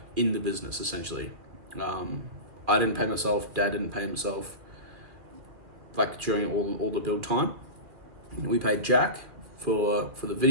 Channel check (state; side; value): late; left; 2.4 ms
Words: in the business essentially. I didn't pay myself, Dad didn't pay himself, like during all the build time. We paid Jack for the